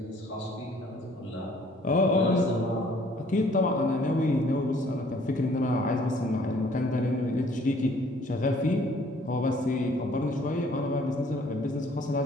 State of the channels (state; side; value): normal; both; correlation 0.59